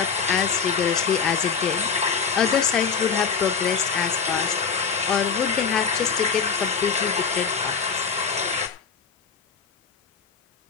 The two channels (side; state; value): right; quieter; 6.0 dB